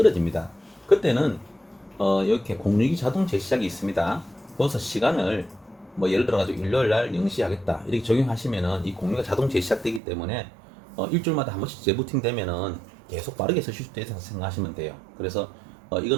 그때는 이렇게 공유기 자동 재시작이 있습니다. 거기서 시간을 뭐 예를 들어 가지고 일요일 날 0시 하겠다 이렇게 적용하시면은 이 공유가 자동 재시작되기 때문에 일주일마다 한 번씩 재부팅 되면은 계속 빠르게 쓰실 수 있다고 생각하시면 돼요. 그래서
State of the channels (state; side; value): drops out; left; at 10.0 s